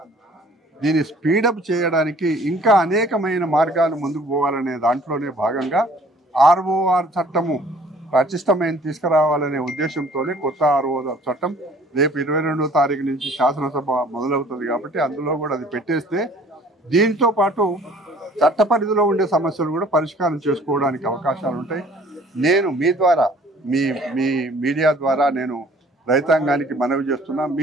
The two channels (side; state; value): both; normal; correlation 0.54